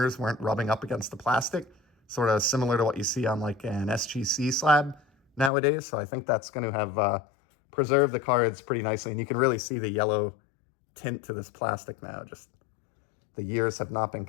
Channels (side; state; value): right; drops out; at 5.5 s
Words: weren't rubbing up against the plastic, sort of similar to what you see on like an SGC slab nowadays. So I think that's going to have preserved the cards pretty nicely, and you can really see the yellow tint to this plastic now. Just the years have not been